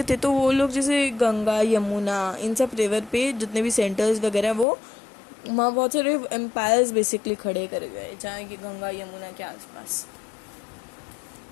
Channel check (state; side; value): drops out; right; at 4.7 s